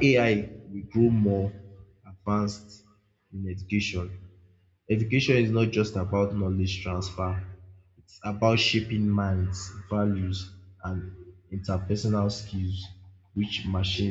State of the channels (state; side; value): identical; both; correlation 1.00